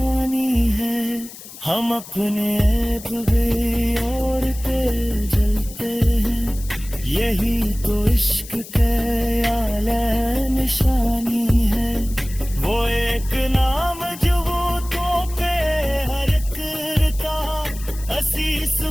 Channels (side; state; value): left; noise; hiss, 16 dB below the sound